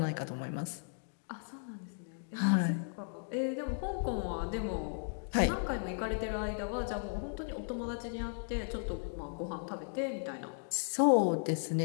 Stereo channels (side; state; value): right; silent; digital silence